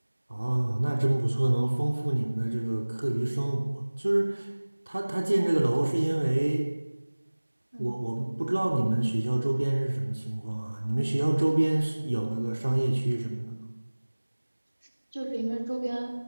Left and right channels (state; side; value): inverted; both; correlation -1.00